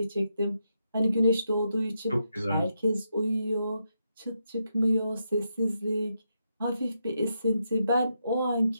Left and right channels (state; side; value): inverted; both; correlation -0.83